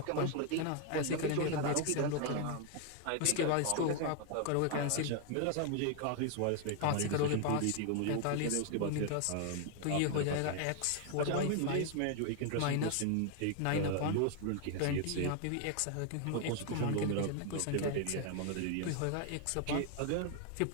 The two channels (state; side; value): different; both; correlation 0.00